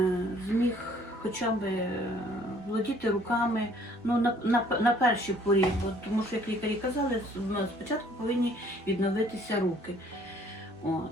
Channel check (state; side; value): normal; both; correlation 0.59